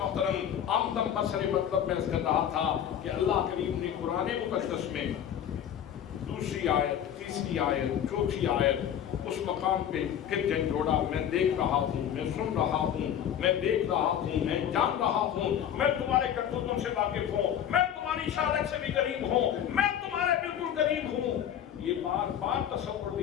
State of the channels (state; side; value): quieter; right; 9.7 dB